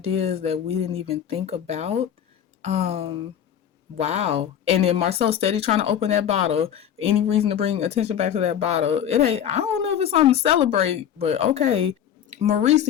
that we didn't even think about. Wow. And then Marcel steady trying to open that bottle. Any reason to bring attention back to that bottle? It ain't. I don't know if it's something to celebrate, but okay. Maurice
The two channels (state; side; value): quieter; right; 9.6 dB